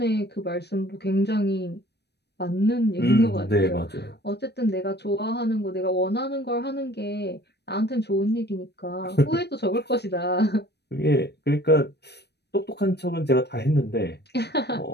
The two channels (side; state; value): right; late; 0.49 ms